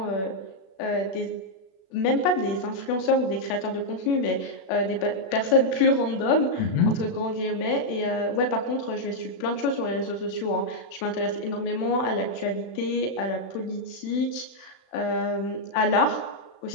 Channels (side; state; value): right; late; 36 ms